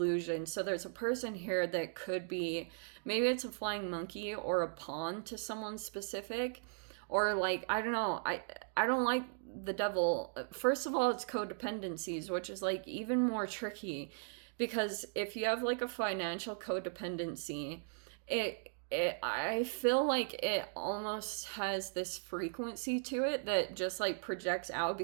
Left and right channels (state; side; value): silent; left; digital silence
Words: So there's a person here that could be, maybe it's a flying monkey or a pawn to someone specific, or like, I don't know, I don't like the Devil. First of all, it's codependencies, which is like even more tricky, because if you have like a financial codependency, I feel like it almost has this frequency to it that just like projects out,